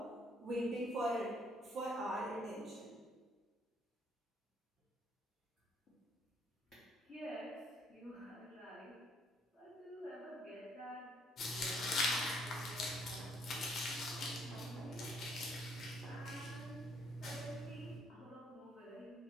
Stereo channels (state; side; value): normal; both; correlation 0.68